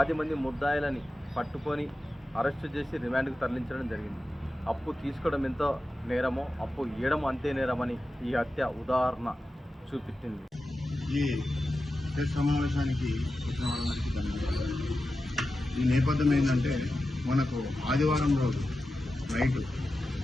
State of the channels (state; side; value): normal; both; correlation 0.92